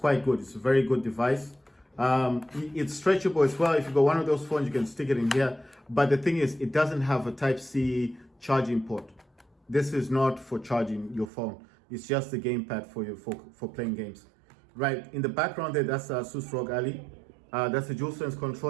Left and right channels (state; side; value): drops out; left; at 11.3 s